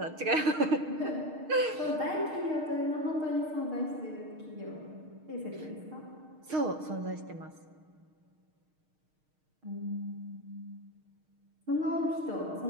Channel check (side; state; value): left; late; 6.5 ms